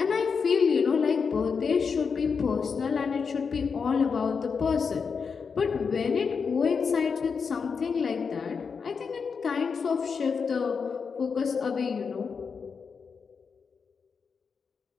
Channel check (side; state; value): right; quieter; 5.7 dB